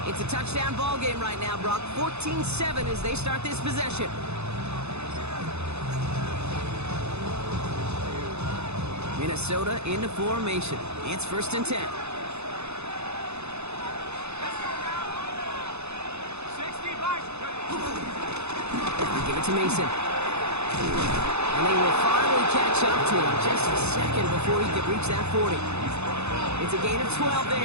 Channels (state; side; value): late; left; 0.81 ms